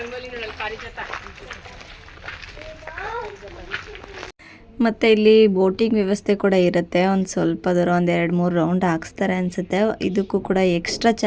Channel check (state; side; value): identical; both; correlation 1.00